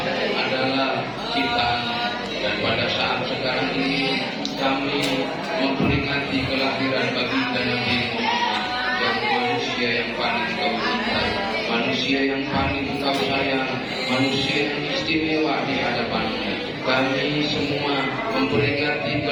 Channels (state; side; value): identical; both; correlation 1.00